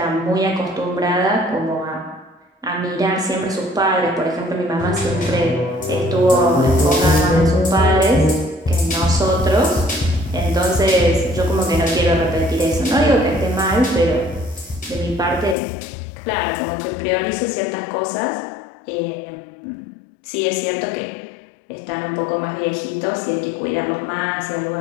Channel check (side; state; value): right; drops out; at 15.6 s